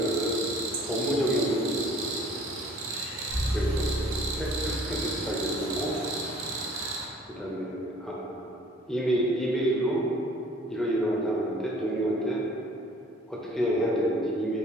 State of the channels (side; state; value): both; normal; correlation 0.53